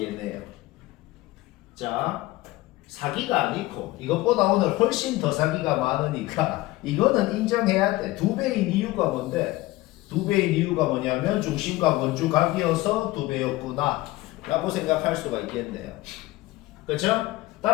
얘네요. 자, 사기가 아니고 이것보다 오늘 훨씬 더 사기가 많으니까 이거는 인정해야 돼. 2배인 이유가 뭔데? 2배인 이유가 뭐냐면 중심각 원주각이어서 2배였구나 라고 생각할 수가 있겠네요. 그렇죠?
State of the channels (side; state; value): right; quieter; 18.8 dB